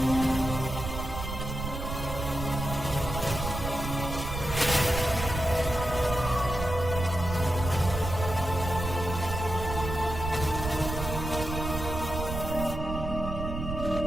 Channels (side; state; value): right; noise; rumble, 5 dB below the sound